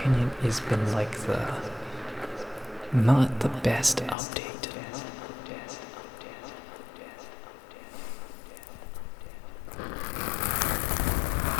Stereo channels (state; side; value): drops out; right; at 4.2 s